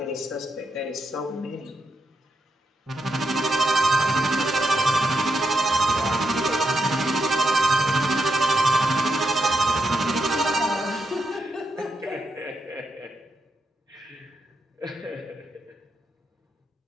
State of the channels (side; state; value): both; normal; correlation 0.83